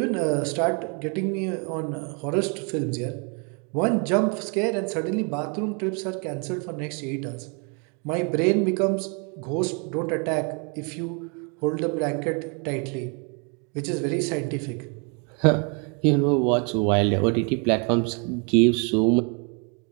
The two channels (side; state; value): left; quieter; 36.0 dB